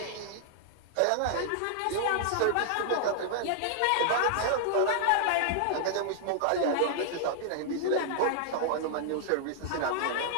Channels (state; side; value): different; both; correlation -0.01